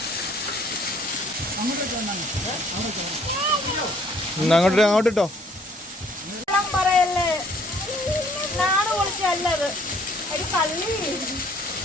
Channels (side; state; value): both; normal; correlation 0.61